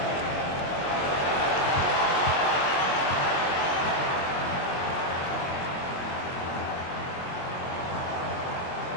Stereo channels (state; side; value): late; right; 22 ms